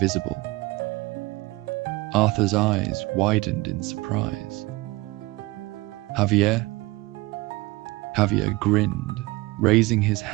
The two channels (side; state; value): left; quieter; 21.3 dB